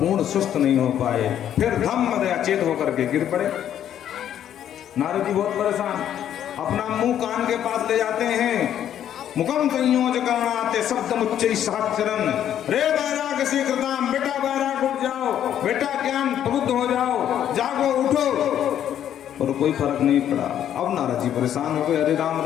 सुस्त नहीं हो पाए। फिर धम्म अचेत होकर के गिर पड़े। नारद जी बहुत परेशान, अपना मुंह कान के पास ले जाते हैं। मुखम संयोज करणाते शब्द मुच्चै सहस्रम, रे वैराग शीघ्रताम, बेटा वैराग उठ जाओ, बेटा ज्ञान प्रबुद्ध हो जाओ, जागो उठो। और कोई फर्क नहीं पड़ा। अब नारद जी परेशान हो गए, अरे राम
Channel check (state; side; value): quieter; right; 10.3 dB